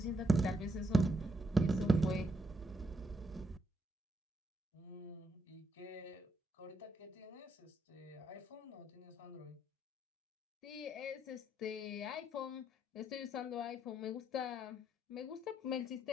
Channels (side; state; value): both; normal; correlation 0.77